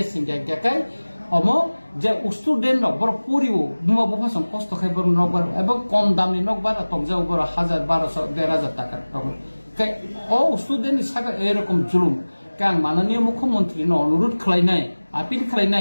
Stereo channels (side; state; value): both; inverted; correlation -1.00